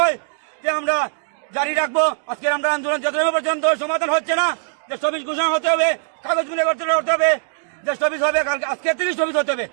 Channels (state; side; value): silent; left; digital silence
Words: যে আমরা জারি রাখবো। আজকে আমরা আন্দোলন যতক্ষণ পর্যন্ত সমাধান হচ্ছে না, যে স্থগিত ঘোষণা হতে হবে, কাগজ মিলে করতে হবে, যে স্থগিত হবে কালকে, আজকে থেকে স্থগিত হতে হবে,